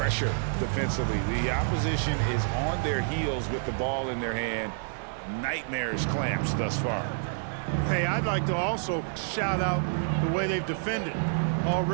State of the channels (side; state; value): left; silent; 59 dB below the other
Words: defensively. The opposition is on their heels with the ball in their hand. Nightmarish clamps thus far. Hey, I'd like to also shout out the way they've defended.